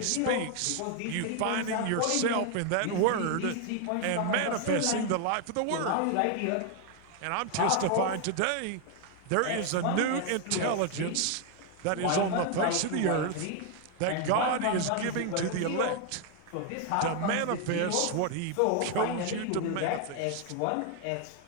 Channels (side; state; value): both; different; correlation 0.01